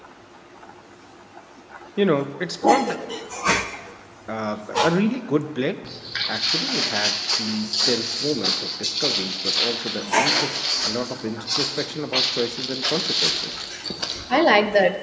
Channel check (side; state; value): both; identical; correlation 1.00